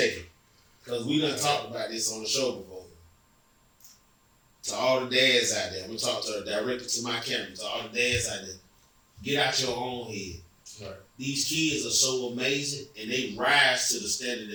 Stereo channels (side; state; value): both; identical; correlation 1.00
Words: second. Because we done talked about this on the show before. To all the dads out there, I'm gonna talk directly to my camera, to all the dads out there, get out your own head. Right. These kids are so amazing and they rise to the standard